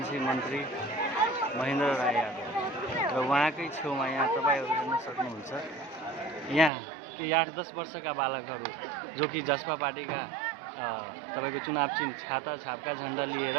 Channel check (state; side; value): drops out; left; at 6.7 s